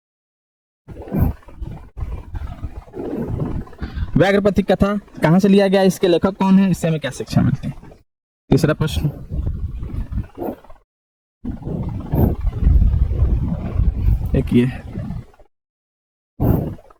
व्याघ्र पथिक कथा कहां से लिया गया, इसके लेखक कौन है, इससे हमें क्या शिक्षा मिलती है? तीसरा प्रश्न, एक ये,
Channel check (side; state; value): both; identical; correlation 1.00